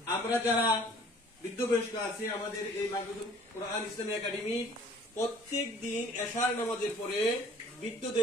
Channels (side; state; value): both; normal; correlation 0.53